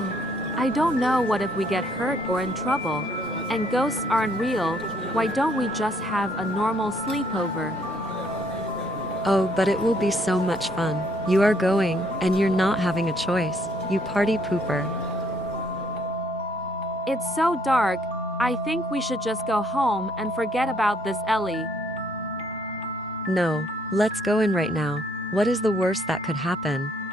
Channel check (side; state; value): both; normal; correlation 0.67